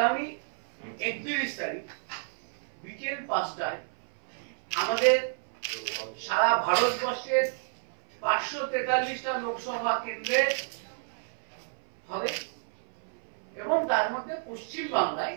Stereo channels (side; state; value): left; silent; 57 dB below the other